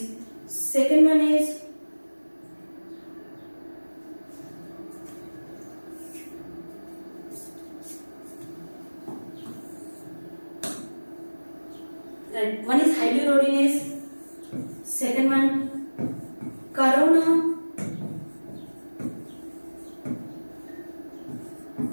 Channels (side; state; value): both; inverted; correlation -1.00